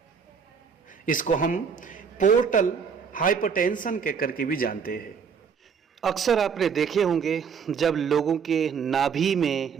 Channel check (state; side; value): quieter; left; 6.4 dB